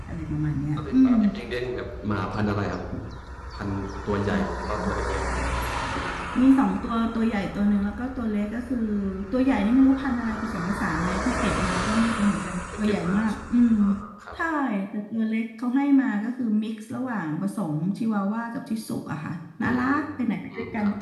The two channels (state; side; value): identical; both; correlation 1.00